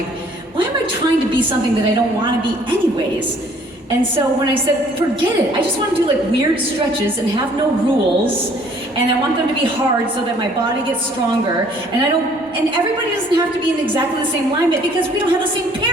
why am I trying to be something that I don't want to be anyways? And so when I said, forget it, I just want to do like weird stretches and have no rules, and I want them to be hard so that my body gets stronger, and everybody doesn't have to be in exactly the same alignment because we don't have the same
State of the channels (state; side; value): normal; both; correlation 0.59